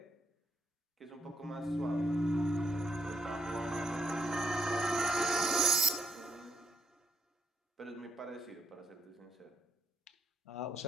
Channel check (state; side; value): normal; both; correlation 0.79